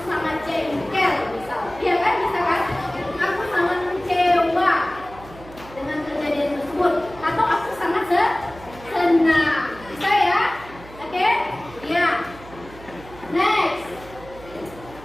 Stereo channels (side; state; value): right; noise; hum, 19 dB below the sound